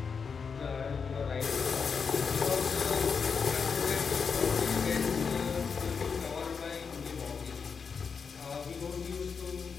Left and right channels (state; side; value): quieter; right; 5.8 dB